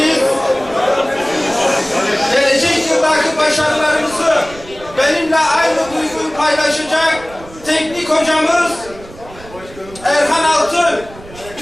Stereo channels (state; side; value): noise; right; rumble, 19 dB below the sound